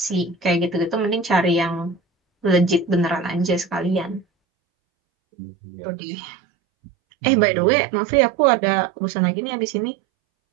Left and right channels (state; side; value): drops out; left; at 4.2 s